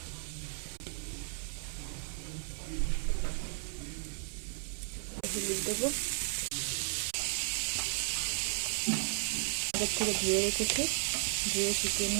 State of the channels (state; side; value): silent; left; 55 dB below the other